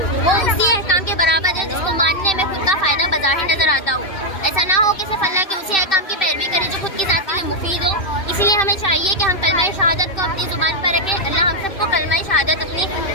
वो उसी अहकाम के बराबर है जिसको मानने में खुद का फ़ायदा बज़ाहिर नज़र आता हो। ऐसा ना हो कि सिर्फ अल्लाह के उसी अहकाम की पैरवी करें जो खुद की ज़ात के लिए मुफीद हो। इसीलिए हमें चाहिए कि हम कलमा शहादत को अपनी ज़ुबान पर रखें। अल्लाह हम सबको कलमा शहादत अपनी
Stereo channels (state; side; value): late; right; 2.6 ms